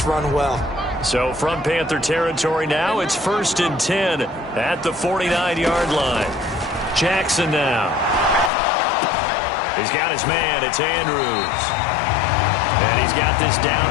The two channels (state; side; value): drops out; right; at 8.5 s